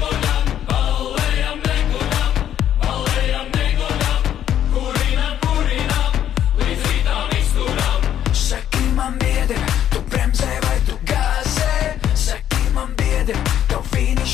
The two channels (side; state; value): right; quieter; 10.5 dB